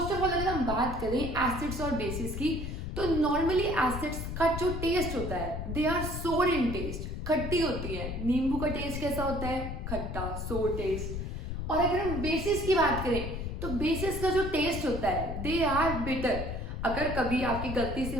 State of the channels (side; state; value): left; noise; rumble, 5 dB below the sound